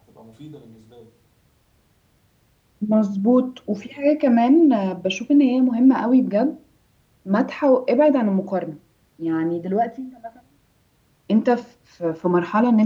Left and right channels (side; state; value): both; identical; correlation 1.00